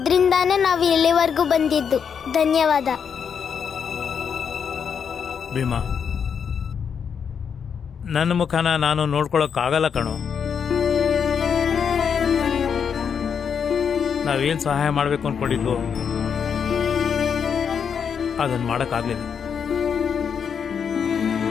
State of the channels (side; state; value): right; quieter; 7.0 dB